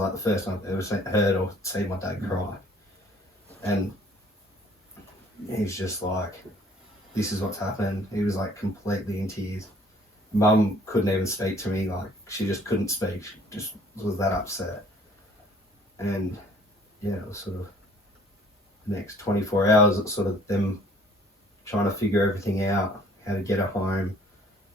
the first time I've ever heard or seen my dad cry. And he's just like, this is what's happened. He was like completely in tears. Mum couldn't even speak to me, like she just couldn't speak. She just was that upset. And yeah, it was sort of the next 24 hours, it's sort of them trying to figure everything out, how to get her home,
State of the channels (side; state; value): both; normal; correlation 0.56